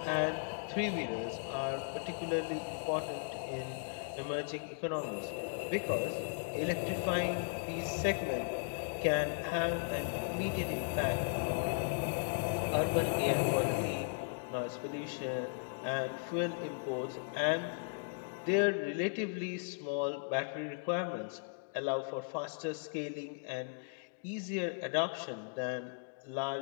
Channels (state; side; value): silent; right; digital silence